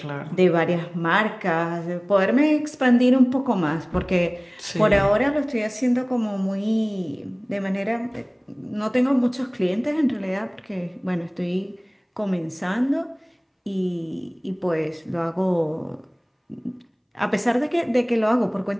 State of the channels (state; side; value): identical; both; correlation 1.00